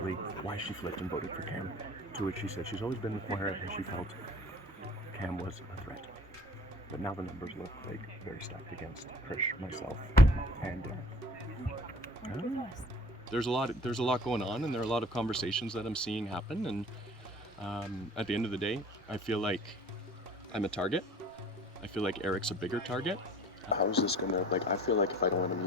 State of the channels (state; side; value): normal; both; correlation 0.48